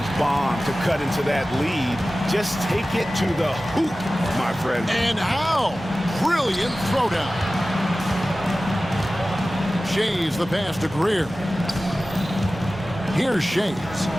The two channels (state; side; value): normal; both; correlation 0.96